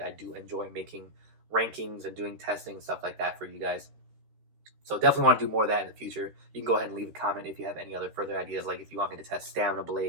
I do enjoy making rankings and doing testing and stuff like that for you guys. So definitely want to do more of that in the future. You can go ahead and leave a comment if you have any other further ideas, like if you want me to test stamina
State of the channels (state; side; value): late; left; 13 ms